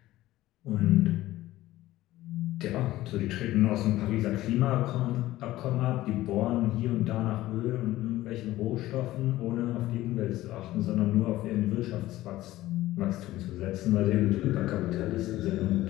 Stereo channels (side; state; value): right; quieter; 16.0 dB